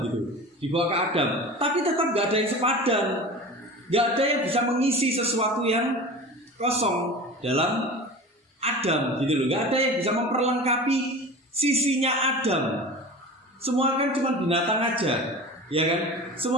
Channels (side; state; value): both; normal; correlation 0.34